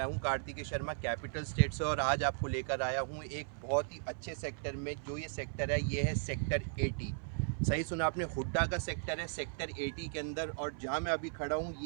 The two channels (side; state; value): left; silent; 53 dB below the other